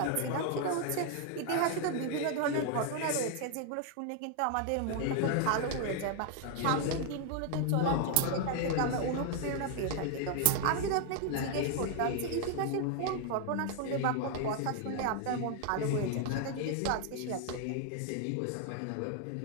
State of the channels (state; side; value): different; both; correlation 0.00